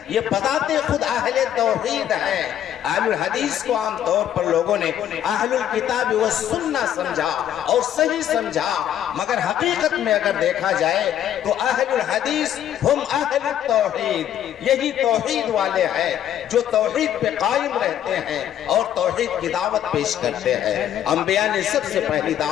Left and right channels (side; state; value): right; quieter; 10.7 dB